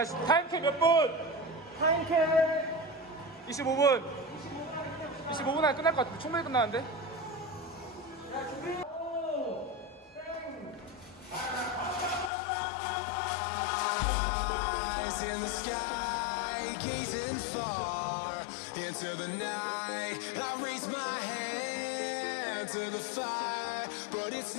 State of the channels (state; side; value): drops out; right; at 12.3 s